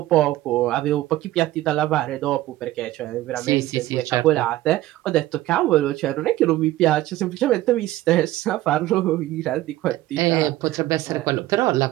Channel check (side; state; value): left; quieter; 15.8 dB